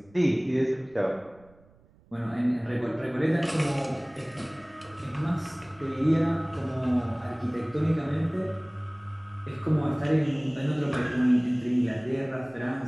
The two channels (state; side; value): noise; right; rumble, 28 dB below the sound